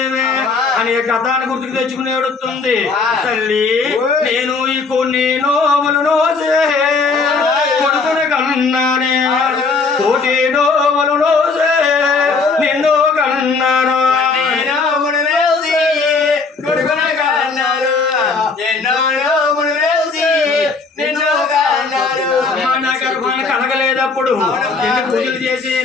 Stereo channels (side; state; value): right; quieter; 4.3 dB